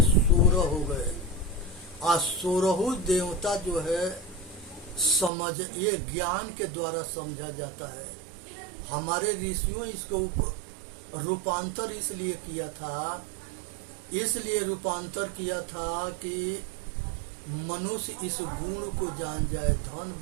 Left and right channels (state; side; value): drops out; left; at 5.3 s